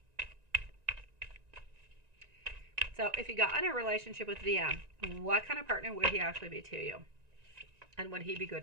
So if you got in a relationship with DM, what kind of partner would he actually be to you? And would he be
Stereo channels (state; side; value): late; left; 1.9 ms